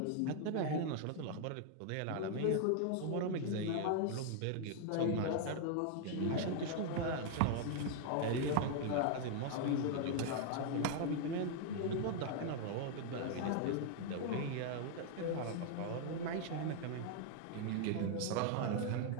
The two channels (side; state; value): both; different; correlation 0.00